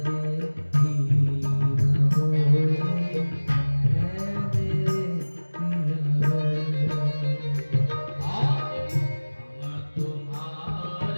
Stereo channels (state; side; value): inverted; both; correlation -1.00